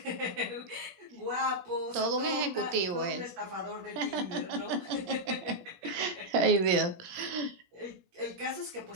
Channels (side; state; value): left; late; 17 ms